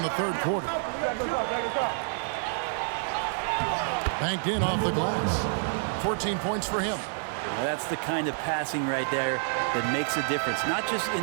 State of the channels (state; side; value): silent; left; digital silence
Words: the third quarter. Banked in off the glass. 14 points for him. Now that's the kind of passing right there that makes a difference. Not just